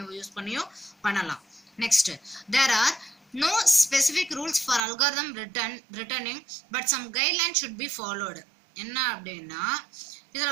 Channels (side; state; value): left; drops out; at 4.8 s